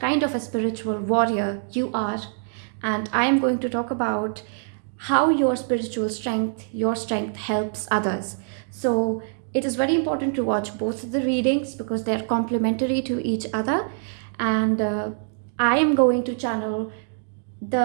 of a spiritual warrior you are, and I am going to talk about how your spiritual strength, your strength helps others. So it is very important to watch both of the readings because they are complementary to each other. And I am going to channel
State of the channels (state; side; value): silent; left; digital silence